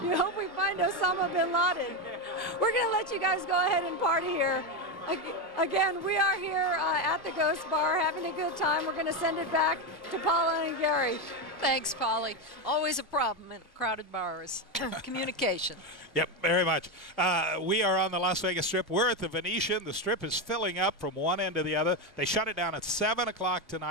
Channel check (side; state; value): both; normal; correlation 0.11